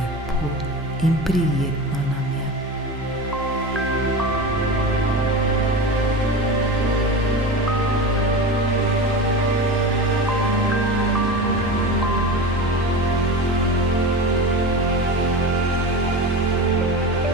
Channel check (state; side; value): normal; both; correlation 0.28